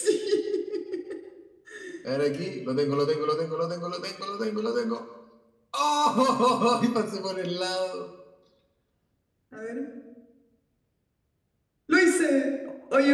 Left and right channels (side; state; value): both; identical; correlation 1.00